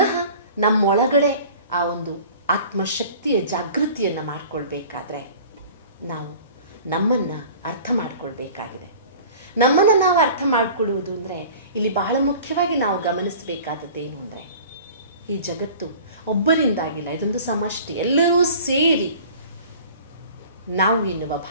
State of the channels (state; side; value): inverted; both; correlation -0.44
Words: ನಮ್ಮೊಳಗಡೆ ಆ ಒಂದು ಆತ್ಮಶಕ್ತಿಯ ಜಾಗೃತಿಯನ್ನು ಮಾಡಿಕೊಳ್ಬೇಕಾದ್ರೆ ನಾವು ನಮ್ಮನ್ನು ಅರ್ಥ ಮಾಡಿಕೊಳ್ಬೇಕಾಗಿದೆ. ನಮ್ಮನ್ನು ನಾವು ಅರ್ಥ ಮಾಡಿಕೊಳ್ಳುವುದು ಅಂದರೆ ಇಲ್ಲಿ ಬಹಳ ಮುಖ್ಯವಾಗಿ ನಾವು ಗಮನಿಸಬೇಕಾದದ್ದೇನು ಅಂದರೆ, ಈ ಜಗತ್ತು ಒಬ್ಬರಿಂದಾಗಿಲ್ಲ, ಇದೊಂದು ಸಮಷ್ಟಿ, ಎಲ್ಲರೂ ಸೇರಿ ನಾವು ಎನ್ನುವ